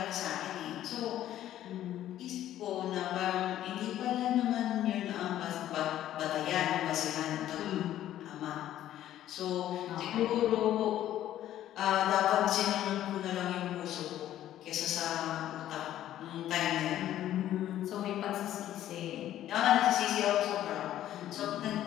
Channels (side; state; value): right; quieter; 12.4 dB